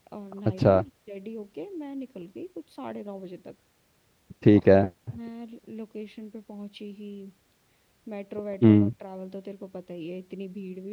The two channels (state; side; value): identical; both; correlation 1.00